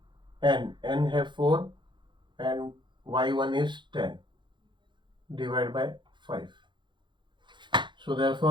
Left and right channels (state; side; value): late; left; 0.23 ms